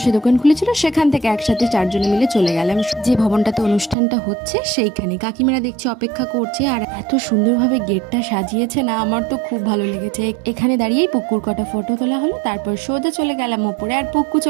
দোকান খুলেছিল, সেখান থেকে একসাথে চারজনে মিলে চলে গেলাম যে ভবনটাতে অনুষ্ঠানটা হচ্ছে সেইখানে। কাকিমারা দেখছি অপেক্ষা করছে, আর এত সুন্দরভাবে গেটটা সাজিয়েছে না, আমার তো খুব ভালো লেগেছে। এখানে দাঁড়িয়েই পুকুর কটা ফটো তোলা হলো, তারপর সোজা চলে গেলাম ওপরে। আর পুক্কু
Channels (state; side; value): drops out; left; at 4.0 s